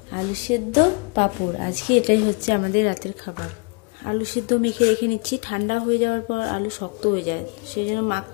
আলু সেদ্ধ, পাঁপড়। আজকে এটাই হচ্ছে আমাদের রাতের খাবার। আলু সেদ্ধ মেখে রেখে নিচ্ছি, ঠান্ডা হয়ে যাওয়ার পর আলু শক্ত হয়ে যায়, সেই জন্য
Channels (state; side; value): quieter; right; 31.8 dB